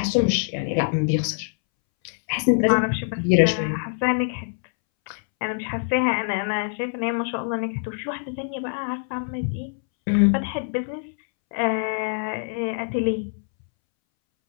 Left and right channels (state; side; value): silent; right; 62 dB below the other